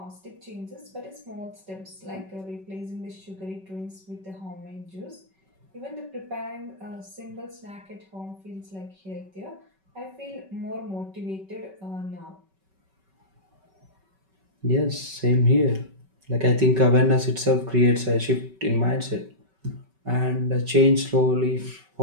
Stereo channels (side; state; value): left; late; 5.2 ms